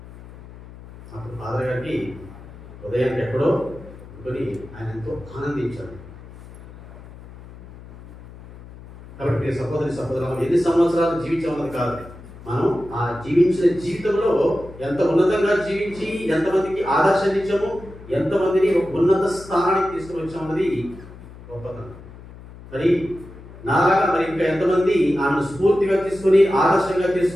అప్పుడు ఫాదర్ గారికి ఉదయానికి ఎక్కడో అనుకుని ఆయన ఎంతో ఆనందించాడు. కాబట్టి సహోదరులు ఎన్ని సంవత్సరాలు జీవించామన్నది కాదు, మనం ఆ జీవించిన జీవితంలో ఎంత ఉన్నతంగా జీవించి ఎంతమందికి ఆదర్శాన్ని ఇచ్చాము, ఎంతమందిని ఒక ఉన్నత స్థానానికి తీసుకుని వచ్చామన్నది గొప్పతనం. మరి నాలాగా మరి ఇంకా ఎంతమంది ఆమెను స్ఫూర్తిగా తీసుకుని ఆదర్శంగా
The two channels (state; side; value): noise; left; hum, 18 dB below the sound